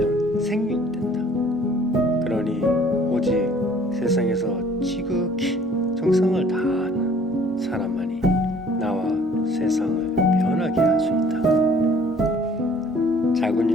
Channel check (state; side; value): normal; both; correlation 0.55